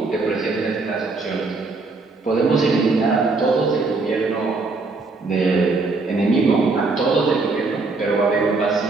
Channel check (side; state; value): left; quieter; 3.7 dB